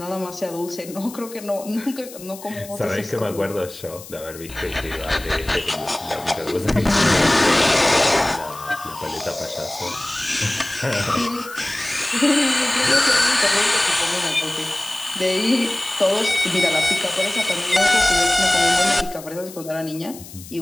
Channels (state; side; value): noise; left; hiss, 16 dB below the sound